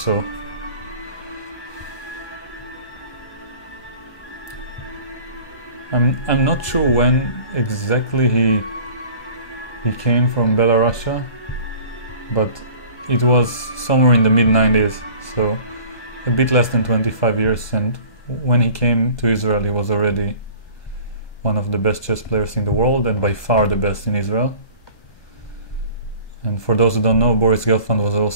I'm not sure when exactly he came from Belarus, but it was somewhere in the mid-90s, so a bit less than 25 years, and when he came to Israel he was already one of the best chess players in the world and by far the best in Israel. And for those who don't know, Boris Gelfand was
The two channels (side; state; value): right; late; 1.2 ms